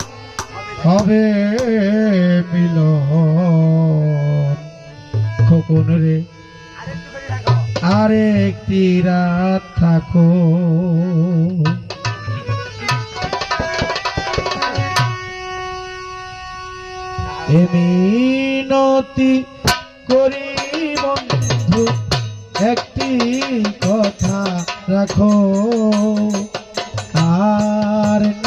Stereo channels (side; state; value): both; identical; correlation 1.00